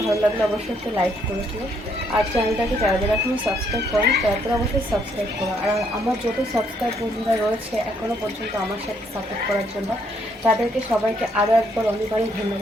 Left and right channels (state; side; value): normal; both; correlation 0.70